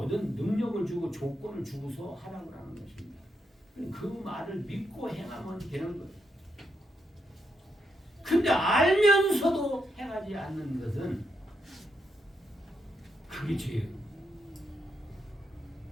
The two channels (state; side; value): normal; both; correlation 0.81